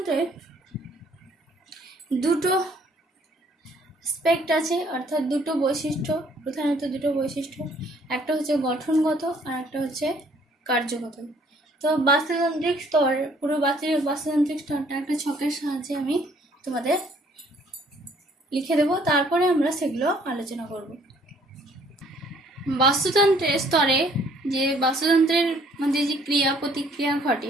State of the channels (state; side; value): normal; both; correlation 0.61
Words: দুটো স্পেক্ট আছে, অর্থাৎ দুটো বৈশিষ্ট্য, প্রধানত দুটো বৈশিষ্ট্য, একটা হচ্ছে গঠনগত আর একটা হচ্ছে কার্যগত। তো বাস্তুতান্ত্রিক স্তর, পুরো বাস্তুতান্ত্রিক স্তরটা একটা ছকের সাহায্যে আমি তোমাদের লিখে দেব, তারপরে আমরা সেগুলো আলোচনা করব। বাস্তুতন্ত্রের স্তরে যে বাস্তুতন্ত্রের মধ্যে যে ক্রিয়া প্রতিক্রিয়া